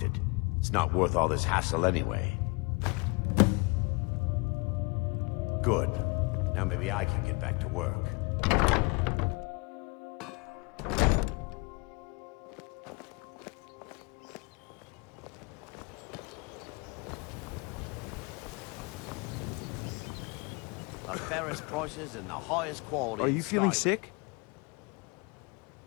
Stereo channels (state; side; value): quieter; right; 29.7 dB